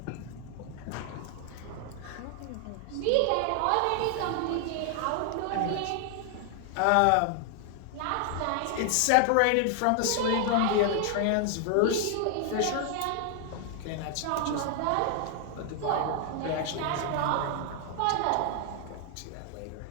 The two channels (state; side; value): different; both; correlation 0.00